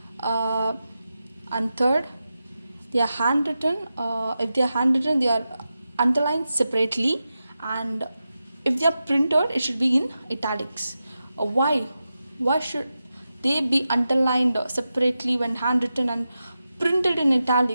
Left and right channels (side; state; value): both; inverted; correlation -0.91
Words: And third, they are handwritten. If they are handwritten, they are underlined separately, and if they are printed, it should be in italics. Why? Why should they be underlined separately when handwritten and printed in